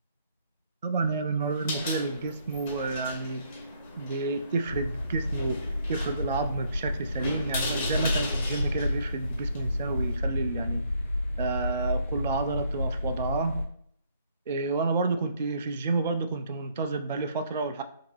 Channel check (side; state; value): both; inverted; correlation -0.68